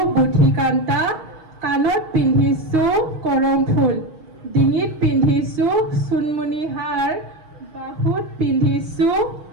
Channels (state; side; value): late; left; 6.4 ms